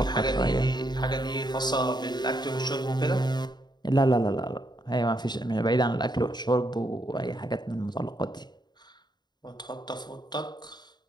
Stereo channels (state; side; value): late; right; 0.21 ms